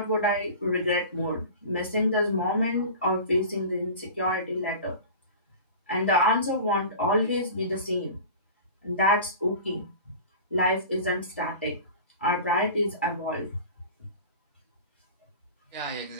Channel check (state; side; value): inverted; both; correlation -0.36